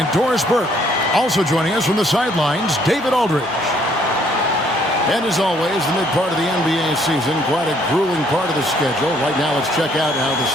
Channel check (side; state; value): both; normal; correlation 0.65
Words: Doris Burke. Also joining us from the sidelines, David Aldridge. And as always, the mid part of the NBA season, quite a grueling part of the schedule. Right now, let's check out how the